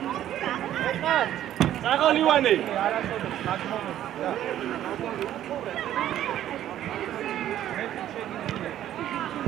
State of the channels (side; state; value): left; quieter; 12.0 dB